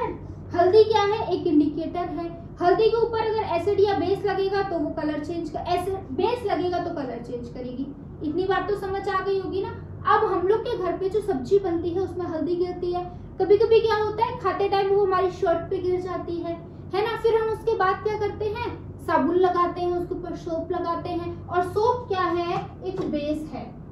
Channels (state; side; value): identical; both; correlation 1.00